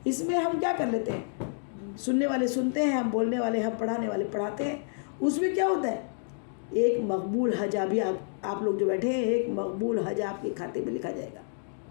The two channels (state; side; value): silent; right; digital silence